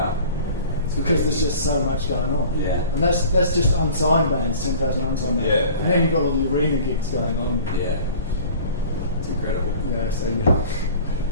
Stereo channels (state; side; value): inverted; both; correlation -0.44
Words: It's because there's just so much going on. Yeah. And that's just unsigned bands, 10,000 unsigned bands. Yeah. And then you've got all the arena gigs going on. Yeah. It's incredible. Yeah, so